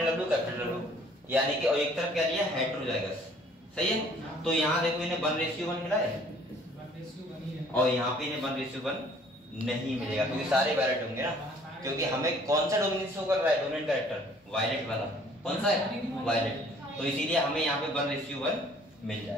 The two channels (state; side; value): normal; both; correlation 0.57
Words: डब्ल्यू यानी कि, और एक तरफ क्या लिया? हेटेरोजाइगस। सही है? तो यहाँ देखो इन्हें 1:1 मिला है, और यहाँ पे इन्हें 1:1 नहीं मिलेगा क्योंकि सारे वायलेट होंगे ना। क्योंकि हमें कौन सा डोमिनेंस शो कर रहा है? डोमिनेंट कैरेक्टर वायलेट वाला। कौन सा है? वायलेट। तो इसीलिए हमें यहाँ पे 1:1 मिल